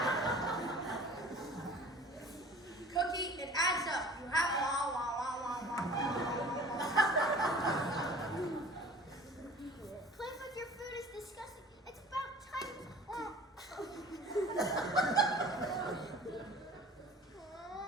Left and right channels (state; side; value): normal; both; correlation 0.45